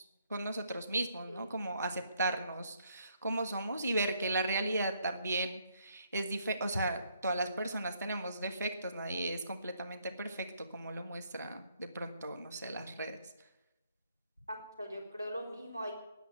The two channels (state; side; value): inverted; both; correlation -0.71